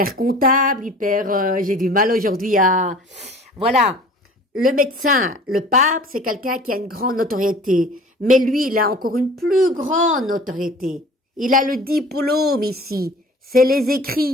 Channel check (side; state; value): both; normal; correlation 0.45